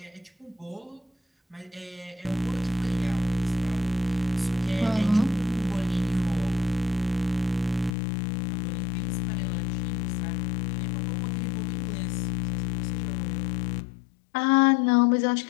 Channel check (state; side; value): drops out; right; at 7.9 s